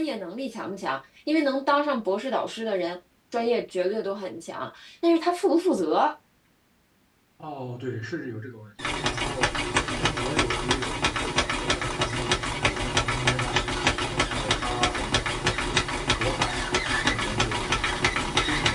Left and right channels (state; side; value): identical; both; correlation 1.00